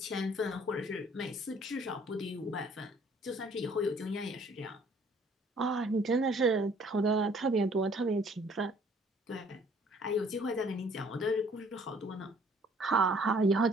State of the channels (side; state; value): both; normal; correlation 0.58